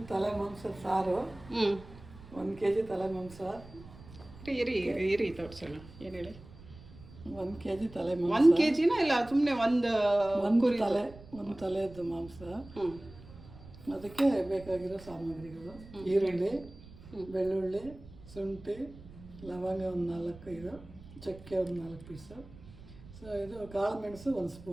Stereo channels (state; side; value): noise; right; rumble, 19 dB below the sound